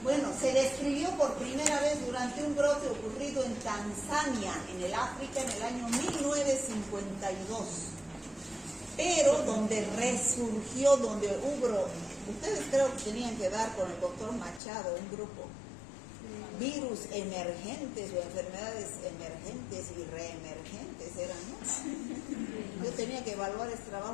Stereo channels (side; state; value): right; drops out; at 14.6 s